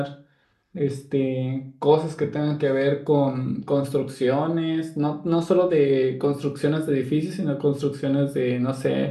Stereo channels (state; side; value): identical; both; correlation 1.00